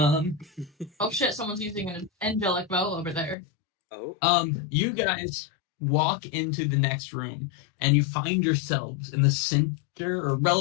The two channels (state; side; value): drops out; right; at 3.4 s